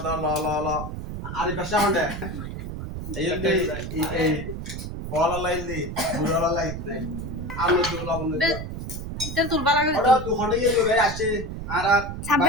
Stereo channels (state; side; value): noise; right; rumble, 7 dB below the sound